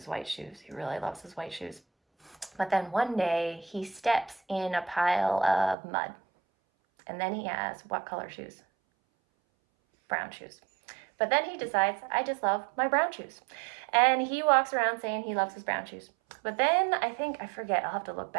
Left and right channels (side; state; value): left; drops out; at 5.8 s